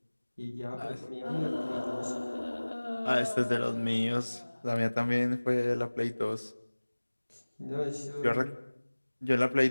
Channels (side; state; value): both; inverted; correlation -1.00